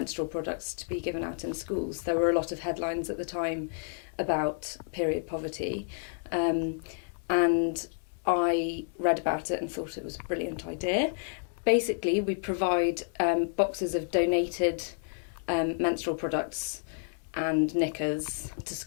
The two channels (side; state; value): right; silent; 58 dB below the other